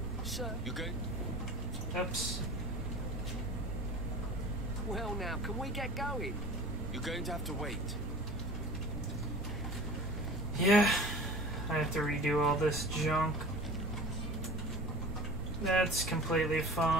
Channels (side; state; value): both; normal; correlation 0.39